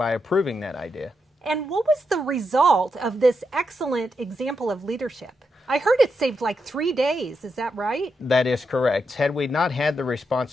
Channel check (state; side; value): normal; both; correlation 0.84